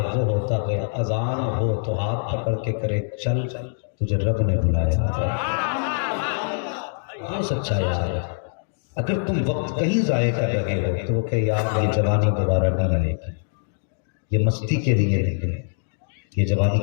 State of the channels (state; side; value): silent; right; digital silence